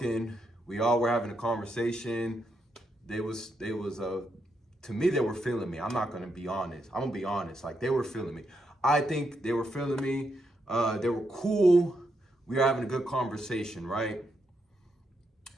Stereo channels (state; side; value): normal; both; correlation 0.80